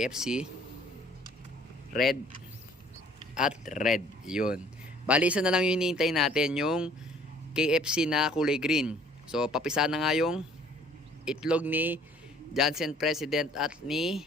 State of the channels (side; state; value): both; normal; correlation 0.56